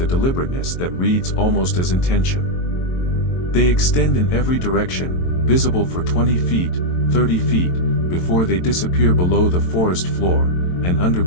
a deliberateness that reads almost as intention. They extend in every direction, visible for 20 feet, 30 feet, before they disappear below the forest floor, and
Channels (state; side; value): late; right; 22 ms